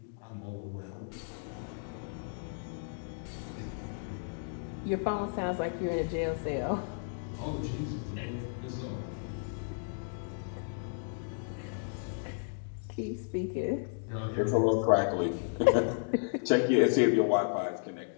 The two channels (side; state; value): right; silent; digital silence